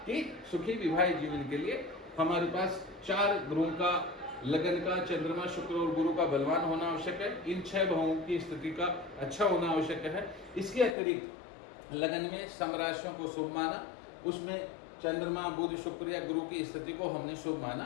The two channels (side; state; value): right; drops out; at 11.0 s